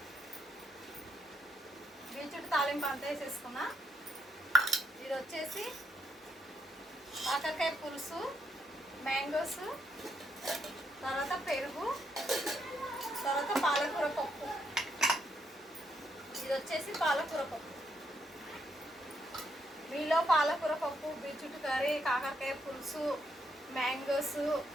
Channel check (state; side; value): normal; both; correlation 0.77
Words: బీచుట్టు తాలింపు అంతా వేసేసుకున్నా. ఇది వచ్చేసి కాకరకాయ పులుసు, మ్యాంగోస్, తర్వాత పెరుగు, తర్వాత పాలకూర పప్పు. ఇది వచ్చేసి పాలకూర పప్పు. మీలో పాలకూర పప్పు, బీచుట్టు కర్రీ, కాకరకాయ పులుసు, మ్యాంగోస్